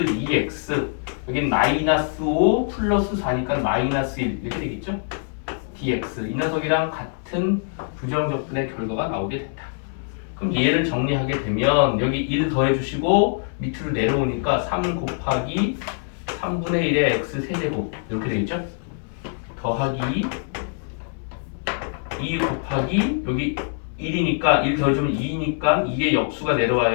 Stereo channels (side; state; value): right; silent; 63 dB below the other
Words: 여긴 마이너스 5 플러스 4니까 마이너스 1 이렇게 되겠죠. dx 이 녀석이랑 같은 부정적분의 결과가 나오게 된다. 그럼 얘를 정리하게 되면 여기 1 더해주시고 밑으로 내려오니까 3 곱하기 3분의 1의 x 세제곱 이렇게 되겠죠. 더하기 2 곱하기 여기 1이니까 1 더해주면 2니까 2의 역수가